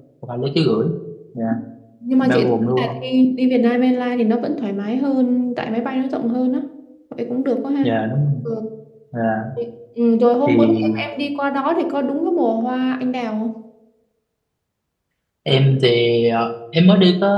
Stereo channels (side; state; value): both; identical; correlation 1.00